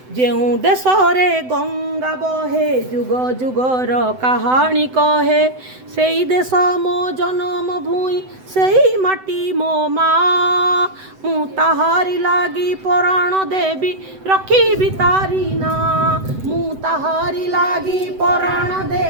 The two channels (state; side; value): late; left; 7.9 ms